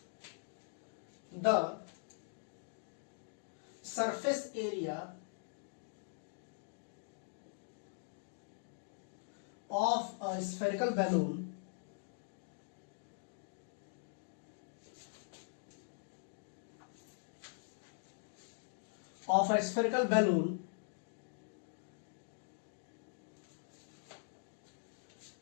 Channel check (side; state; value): right; silent; digital silence